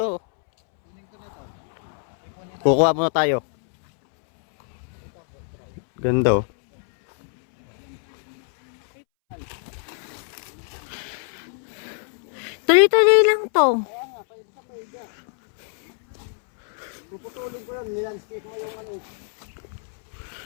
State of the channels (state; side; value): silent; right; 62 dB below the other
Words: Kukuha muna tayo. Ganda oh. Tuloy-tuloy lang to. Puputulin ko yan, nilandscape mo yung ano.